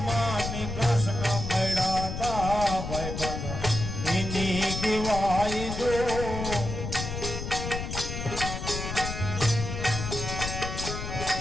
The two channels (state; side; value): noise; left; rumble, 5 dB below the sound